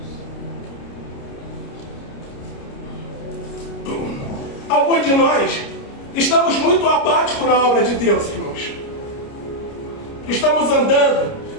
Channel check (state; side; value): late; right; 29 ms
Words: Alguns de nós estamos muito apáticos na obra de Deus, irmãos. Estamos andando